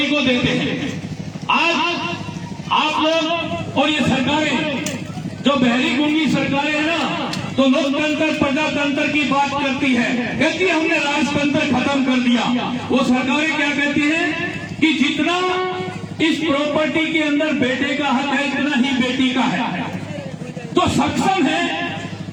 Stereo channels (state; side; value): identical; both; correlation 1.00